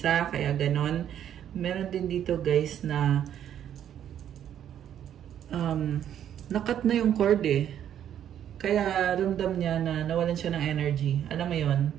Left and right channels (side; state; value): left; quieter; 10.1 dB